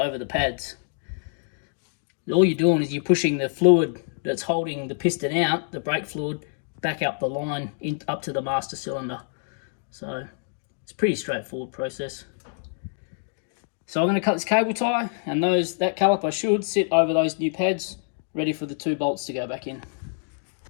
the pads. All you're doing is you're pushing the fluid that's holding the piston out, the brake fluid, back up the line up to the master cylinder. So it's a pretty straightforward process. So I'm going to cut this cable tie, and that caliper should sit over those new pads, ready for the two bolts to go back in.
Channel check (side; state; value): right; silent; digital silence